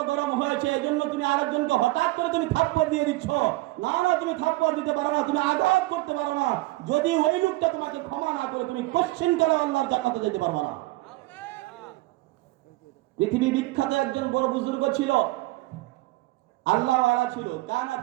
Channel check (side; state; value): left; quieter; 20.1 dB